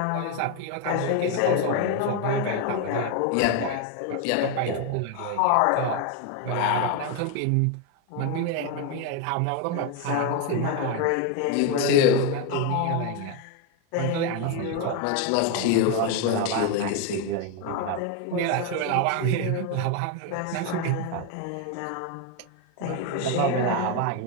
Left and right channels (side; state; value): both; different; correlation 0.01